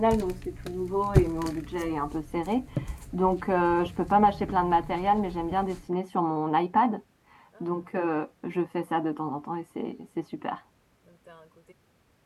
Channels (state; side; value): identical; both; correlation 1.00